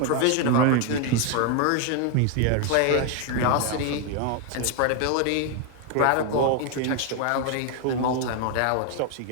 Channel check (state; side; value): different; both; correlation 0.01